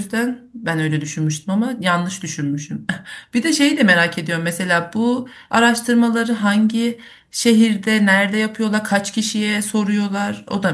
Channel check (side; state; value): both; identical; correlation 1.00